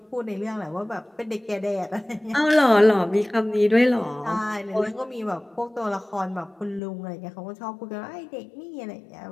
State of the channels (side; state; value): right; drops out; at 6.8 s